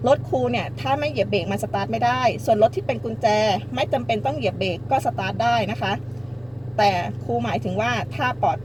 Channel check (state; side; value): noise; left; rumble, 28 dB below the sound